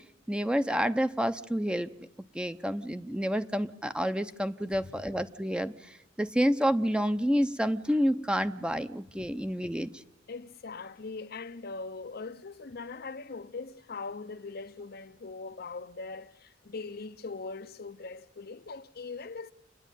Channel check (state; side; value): normal; both; correlation 0.88